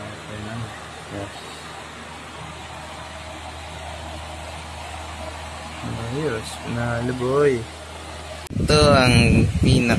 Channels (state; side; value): identical; both; correlation 1.00